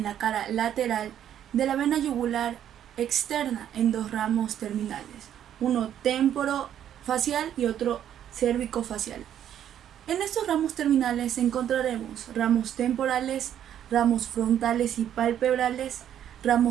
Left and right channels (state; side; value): quieter; left; 10.3 dB